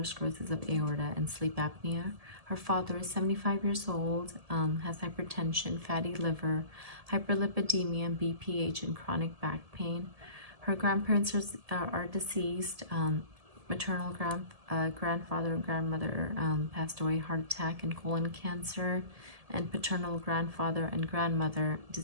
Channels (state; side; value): late; left; 1.7 ms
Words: sclerosis of aorta, and sleep apnea. Her father is 75 years old, has hypertension, fatty liver, hyperlipidemia, BPH, and chronic back pain. Her grandparents are deceased. Maternal grandfather and grandmother passed away, heart attack and colon cancer. And paternal grandfather and grandmother